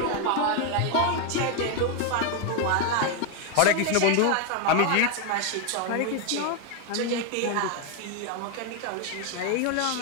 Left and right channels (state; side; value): different; both; correlation 0.01